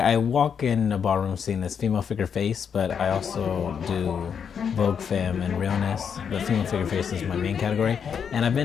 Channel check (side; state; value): right; quieter; 7.2 dB